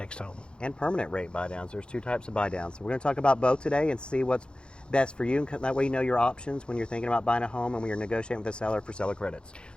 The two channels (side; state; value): right; late; 0.053 ms